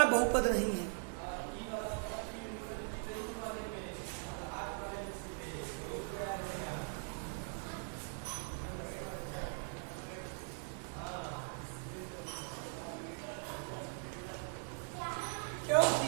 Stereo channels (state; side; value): silent; left; 51 dB below the other